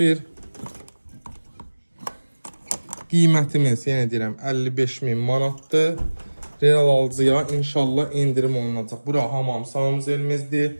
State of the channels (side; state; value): both; inverted; correlation -1.00